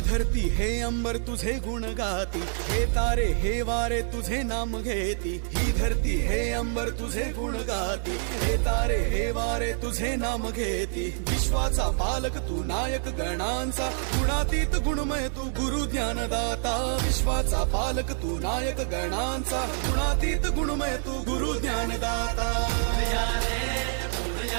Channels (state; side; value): silent; left; 60 dB below the other